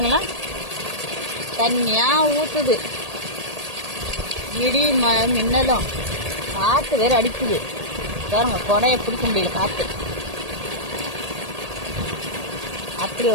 தண்ணியா ஊத்துது. இடி மின்னலும் காத்து வேற அடிக்குது பாருங்க. கொடைய பிடிக்க முடியல, காத்து அப்படி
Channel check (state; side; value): late; left; 1.8 ms